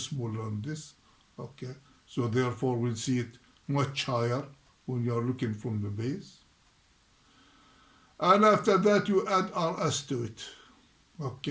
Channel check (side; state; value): both; identical; correlation 1.00